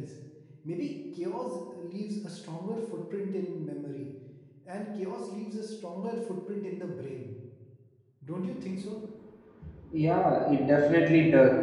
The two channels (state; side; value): identical; both; correlation 1.00